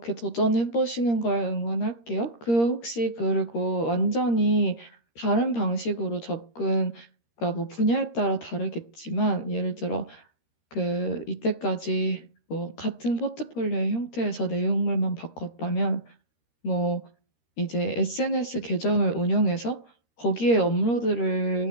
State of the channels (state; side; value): late; right; 13 ms